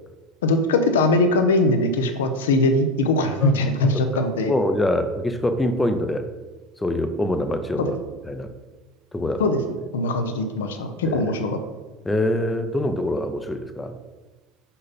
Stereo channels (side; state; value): both; normal; correlation 0.21